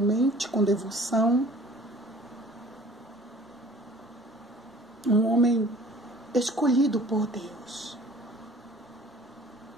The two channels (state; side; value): normal; both; correlation 0.50